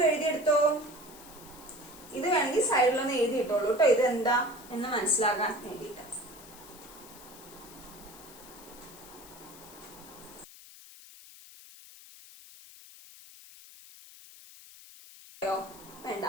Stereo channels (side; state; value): left; noise; hiss, 19 dB below the sound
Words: എഴുതിയെടുത്തോ. ഇത് വേണമെങ്കിൽ സൈഡിലൊന്ന് എഴുതിയിട്ടോളൂ കേട്ടോ. ഇത് എന്താ എന്ന് മനസ്സിലാക്കാൻ വേണ്ടിയിട്ട്. വേണ്ട,